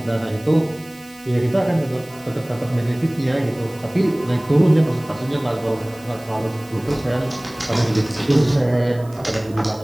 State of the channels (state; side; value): noise; right; hiss, 25 dB below the sound